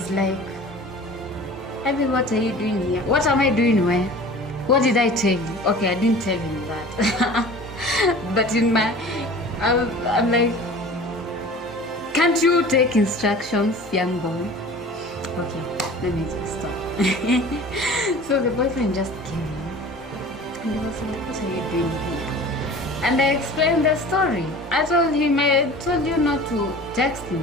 like, Abby, what are you doing here? What am I doing where? What did I tell you? Okay, I didn't tell him that. But in my, I'm like, can't you take instructions, young boy? Okay, let me just stop. So the boyfriend just came in and he was like, what are you doing here? And I explained the story. I told him, I told you not to text me.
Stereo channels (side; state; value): both; normal; correlation 0.41